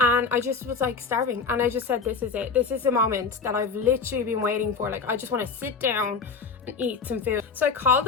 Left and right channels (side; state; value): right; quieter; 5.1 dB